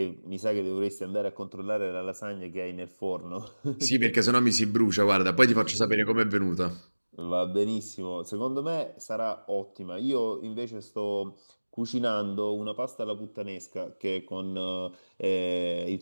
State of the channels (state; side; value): inverted; both; correlation -1.00